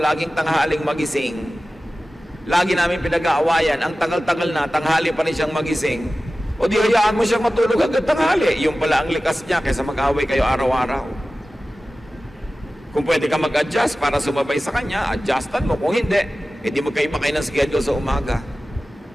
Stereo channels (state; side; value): normal; both; correlation 0.96